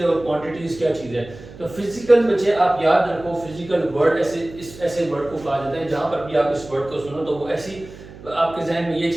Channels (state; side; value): noise; right; hum, 17 dB below the sound